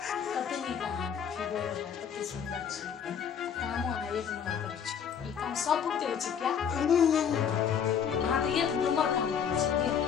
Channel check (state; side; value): quieter; right; 7.7 dB